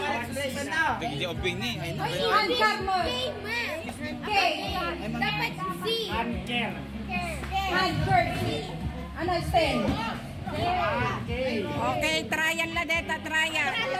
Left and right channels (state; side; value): identical; both; correlation 1.00